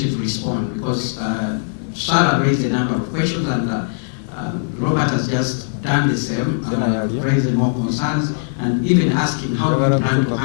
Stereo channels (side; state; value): right; silent; 66 dB below the other